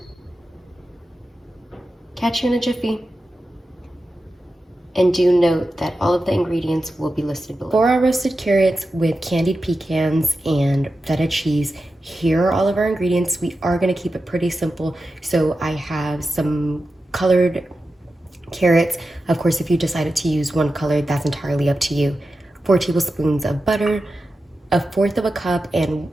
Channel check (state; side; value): normal; both; correlation 0.91